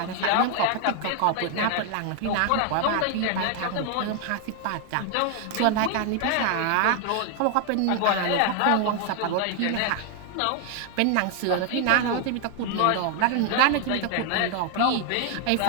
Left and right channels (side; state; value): both; different; correlation 0.00